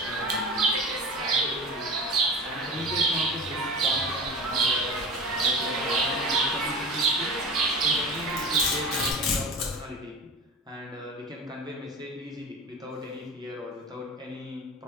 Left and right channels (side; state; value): both; normal; correlation 0.31